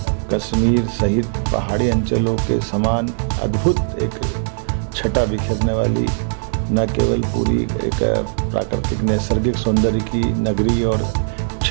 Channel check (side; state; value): left; silent; digital silence